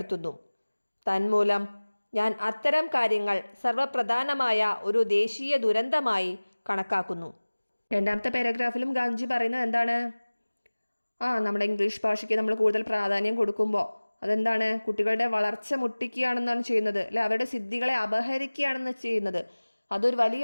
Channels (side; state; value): both; inverted; correlation -1.00